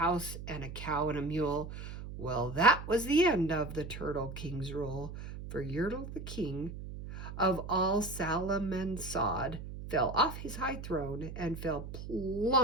and a cow and a mule. Well, that was the end of the turtle king's rule, for Yertle the king of all Salamansod fell off his high throne and fell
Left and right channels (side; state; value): right; noise; hum, 9 dB below the sound